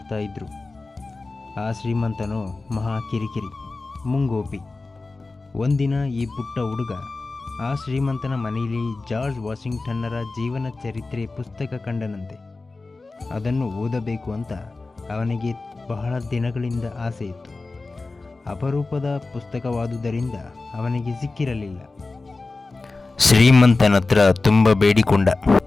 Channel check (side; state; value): right; quieter; 3.5 dB